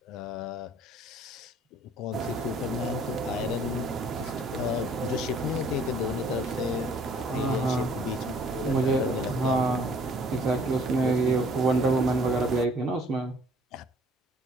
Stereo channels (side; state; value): both; normal; correlation 0.57